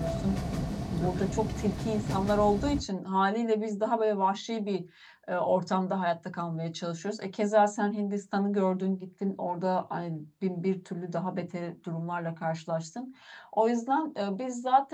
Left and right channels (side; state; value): both; identical; correlation 1.00